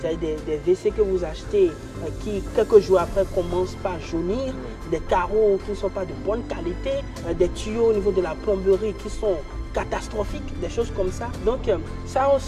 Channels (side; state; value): both; identical; correlation 1.00